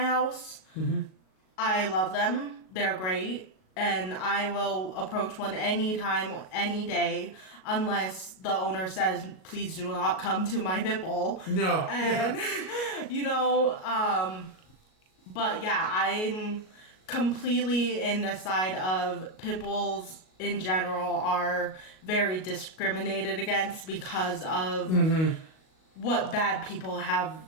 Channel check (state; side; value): late; right; 38 ms